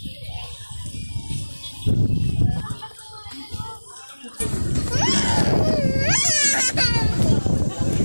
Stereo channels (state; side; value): inverted; both; correlation -1.00